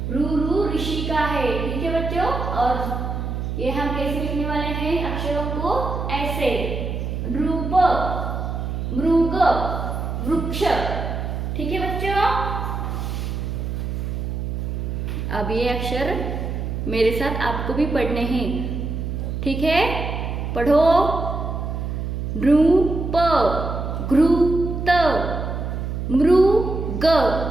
रू, रू ऋषि का है। ठीक है बच्चों, और ये हम कैसे लिखने वाले हैं अक्षरों को? ऐसे, रूप, मृग, वृक्ष। ठीक है बच्चों, अब ये अक्षर मेरे साथ आपको भी पढ़ने हैं। ठीक है, पढ़ो। नृप, घृत, मृग,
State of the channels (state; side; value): noise; right; hum, 3 dB below the sound